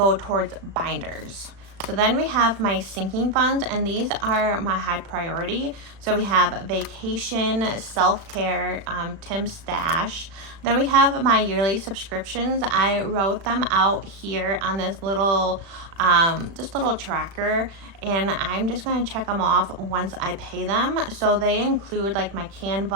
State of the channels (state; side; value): late; left; 36 ms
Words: towards binders. So then we have my sinking funds, and these are my high priority. So we have vacation, self-care, Tim's stash. Then we have my yearly subscriptions. I wrote them out here on this little little tracker, and I'm just going to check them off once I pay them. So they include like my